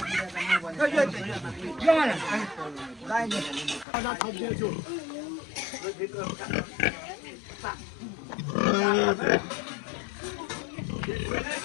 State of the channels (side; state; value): right; drops out; at 3.9 s